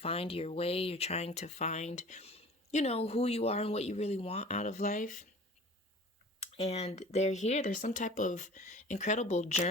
your way, you're trying to find, you know, who you are and what you really want out of life. And they're here, there's some type of incredible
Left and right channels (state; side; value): normal; both; correlation 0.44